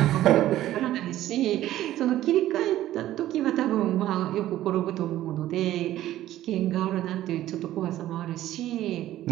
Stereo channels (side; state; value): left; quieter; 13.8 dB